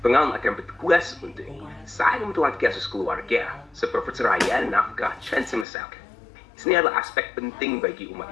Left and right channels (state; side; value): drops out; right; at 5.7 s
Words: Pengadilan akan bertugas untuk menentukan kasus keluarga, seperti perceraian, nafkah, dan semisal. Ini adalah aspek penting bagi umat